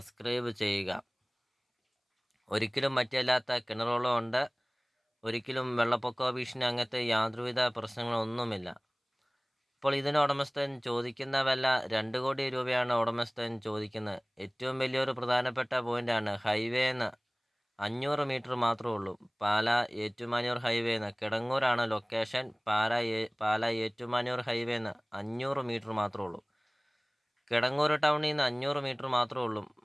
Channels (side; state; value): both; identical; correlation 1.00